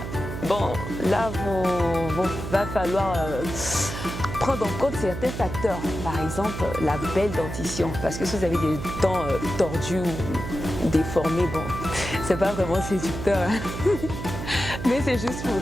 Bon, là, va falloir prendre en compte certains facteurs. Par exemple, la belle dentition. Parce que si vous avez des dents tordues ou déformées, bon, c'est pas vraiment séducteur. Mais c'est juste pour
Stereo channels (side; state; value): right; noise; hum, 7 dB below the sound